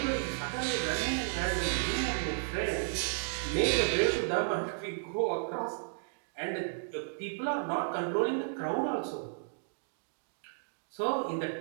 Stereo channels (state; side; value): silent; left; digital silence